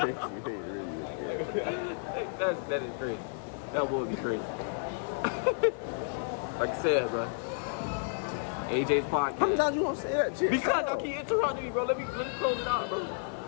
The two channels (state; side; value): silent; right; 57 dB below the other